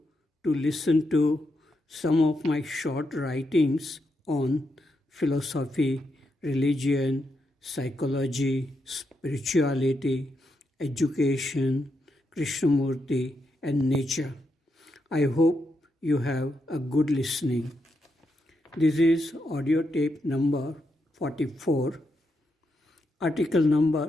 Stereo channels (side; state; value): both; normal; correlation 0.83